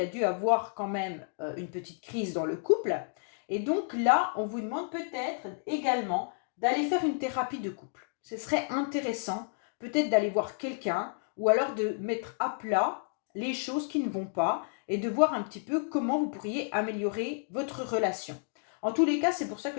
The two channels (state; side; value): silent; right; digital silence